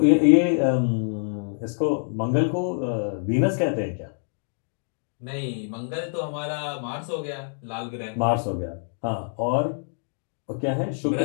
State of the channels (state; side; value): silent; right; digital silence